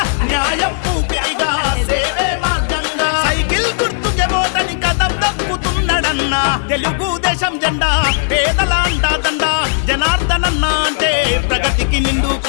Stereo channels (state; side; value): silent; right; 69 dB below the other